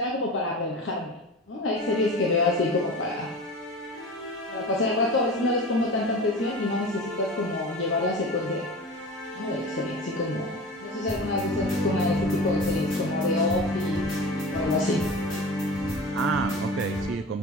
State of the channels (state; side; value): normal; both; correlation 0.33